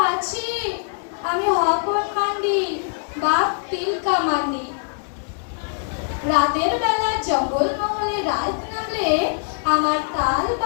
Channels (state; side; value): silent; right; digital silence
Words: আছি, আমি হপন মান্ডি, বাপ তিলকা মান্ডি। রাতের বেলা জঙ্গল মহলে রাত নামলে আমার তাল